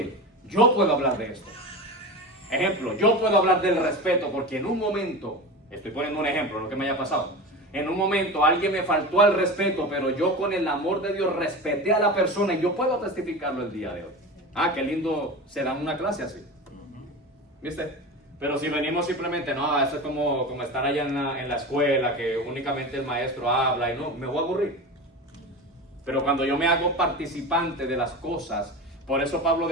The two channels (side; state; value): both; normal; correlation 0.28